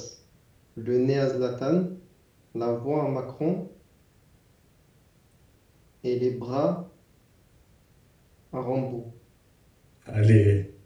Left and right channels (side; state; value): both; identical; correlation 1.00